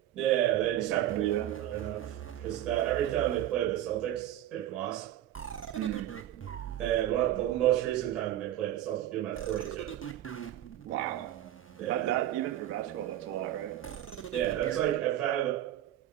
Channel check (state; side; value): quieter; left; 12.7 dB